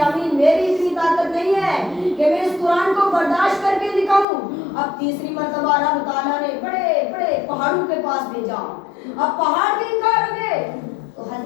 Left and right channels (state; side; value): drops out; right; at 4.2 s